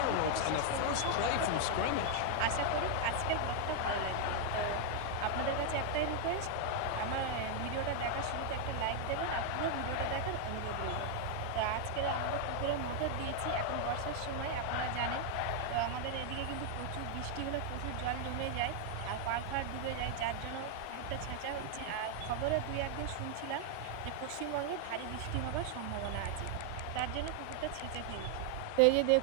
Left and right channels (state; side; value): different; both; correlation 0.00